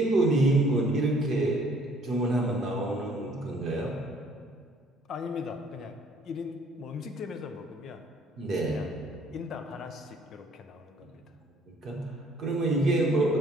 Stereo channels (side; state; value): both; normal; correlation 0.60